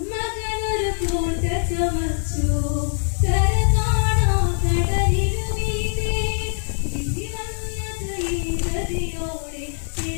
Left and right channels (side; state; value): right; silent; 62 dB below the other